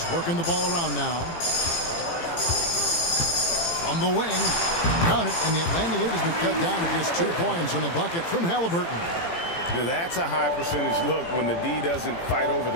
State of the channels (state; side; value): late; right; 18 ms